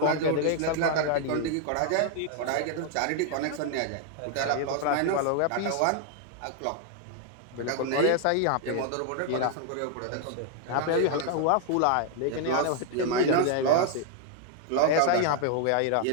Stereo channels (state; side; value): different; both; correlation 0.00